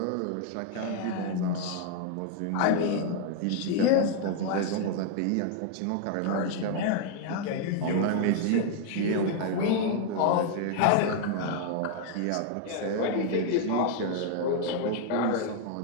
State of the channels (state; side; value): different; both; correlation 0.00